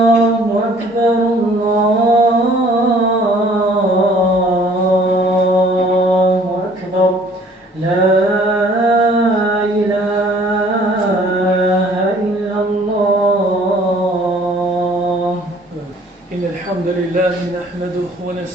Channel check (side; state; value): both; normal; correlation 0.56